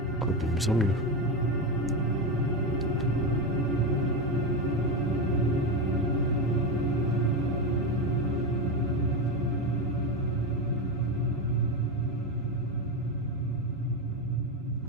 De mieux en mieux.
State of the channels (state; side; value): normal; both; correlation 0.13